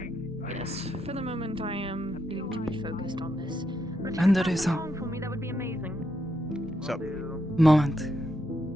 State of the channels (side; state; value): both; normal; correlation 0.80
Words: Yes. For the moment, I am needing to be focused on this. And there is a For me, that would be amazing. Sup? moment.